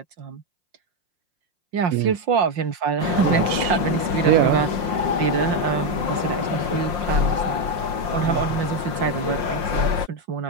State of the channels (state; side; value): late; left; 5.6 ms